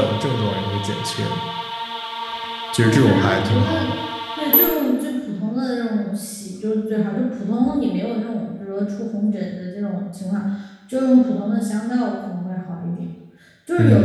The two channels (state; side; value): identical; both; correlation 1.00